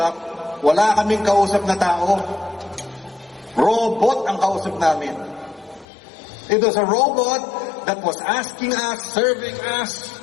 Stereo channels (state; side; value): drops out; right; at 5.9 s